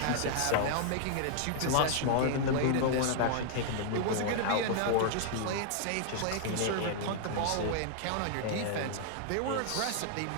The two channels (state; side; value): different; both; correlation -0.01